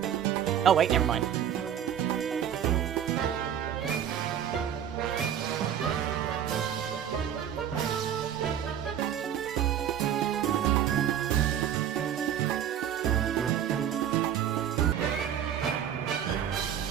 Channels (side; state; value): left; quieter; 9.6 dB